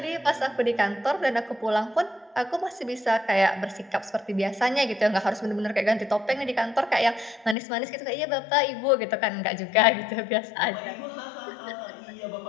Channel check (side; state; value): right; drops out; at 7.6 s